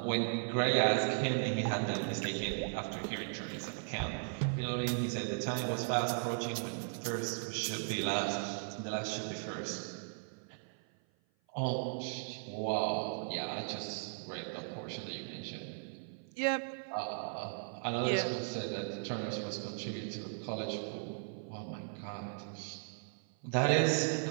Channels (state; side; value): silent; left; 53 dB below the other